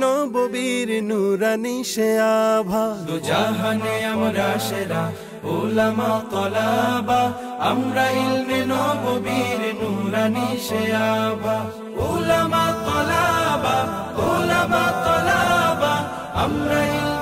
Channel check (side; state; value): both; identical; correlation 1.00